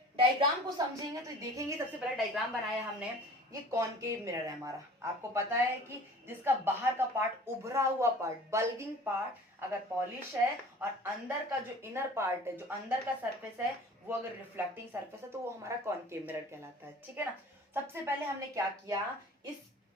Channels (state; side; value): normal; both; correlation 0.45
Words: डायग्राम को समझेंगे तो देखेंगे, सबसे पहले डायग्राम बनाया हमने। ये कॉनकेव मिरर है हमारा। आपको पता है कि जिसका बाहर का पार्ट, उभरा हुआ पार्ट, बल्गिंग पार्ट अगर पॉलिश है और अंदर का जो इनर पार्ट है, जो अंदर का सरफेस है वो अगर रिफ्लेक्टिंग सरफेस है तो वो हमारा कॉनकेव मिरर कहलाता है, ठीक है ना। सबसे पहले हमने क्या किया,